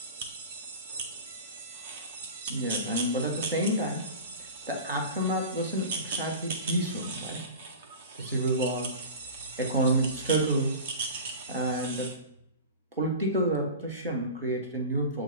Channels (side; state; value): both; inverted; correlation -0.33